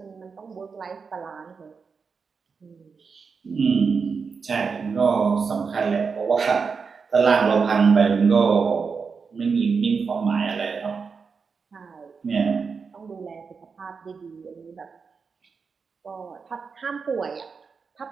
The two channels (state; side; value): quieter; left; 5.3 dB